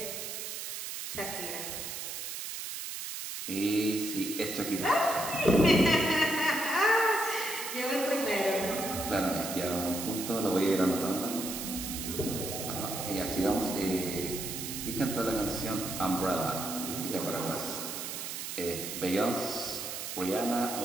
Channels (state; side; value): noise; right; hiss, 6 dB below the sound